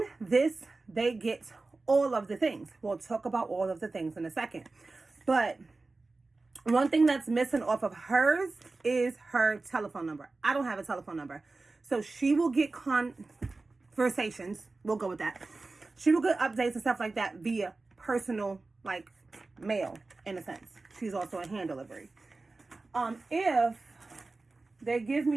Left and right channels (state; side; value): quieter; left; 3.5 dB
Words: this, they get all of the things. We'll talk about all of the things in a second. But one thing that's missing off of hers is her telephone number. I don't have a telephone number. So she will get conversations. We'll go with that. She will get updates and stuff like that via personal, mail, in a sense. She's also a hand delivery. If they give